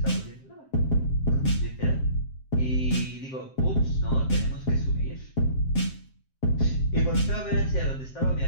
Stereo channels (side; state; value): right; late; 7.6 ms